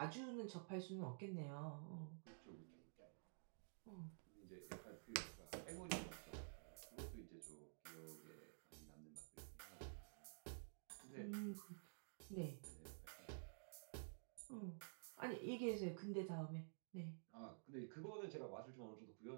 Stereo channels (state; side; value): silent; left; digital silence